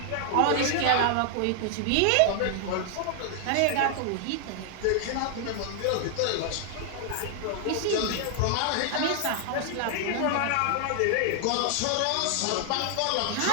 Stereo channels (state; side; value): different; both; correlation 0.00